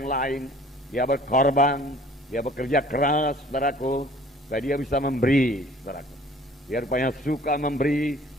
lain. Dia berkorban, dia bekerja keras, saudaraku, supaya dia bisa memberi, saudaraku. Dia rupanya suka memberi,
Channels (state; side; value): normal; both; correlation 0.52